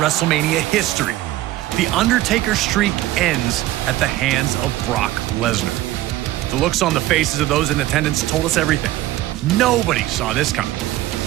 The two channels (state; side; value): quieter; left; 15.6 dB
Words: history. The Undertaker streak ends at the hands of Brock Lesnar. The looks on the faces of those in attendance told us everything. Nobody saw this coming.